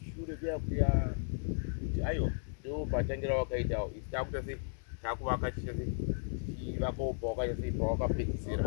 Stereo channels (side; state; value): right; silent; 54 dB below the other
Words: kuya kuti aiwa ndo patangira wakaita isi takuita sei takuvaka chiita sei tichivakawo pawakaita sei